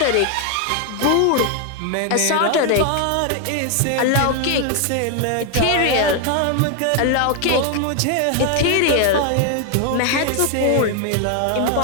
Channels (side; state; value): both; different; correlation 0.01